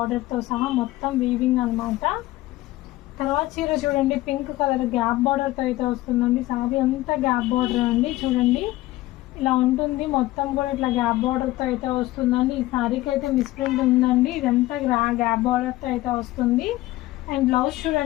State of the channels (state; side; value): quieter; right; 17.5 dB